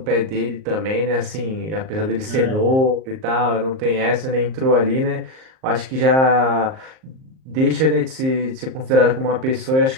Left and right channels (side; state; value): left; late; 38 ms